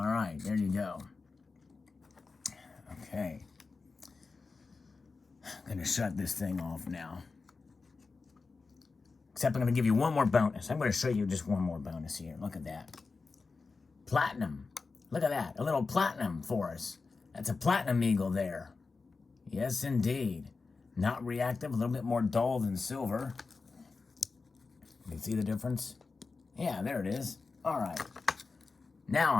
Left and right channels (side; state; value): right; quieter; 4.3 dB